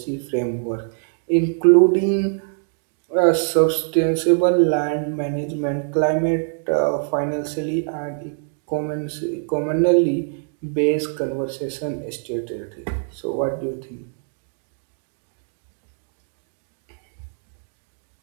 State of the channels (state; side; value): silent; left; 63 dB below the other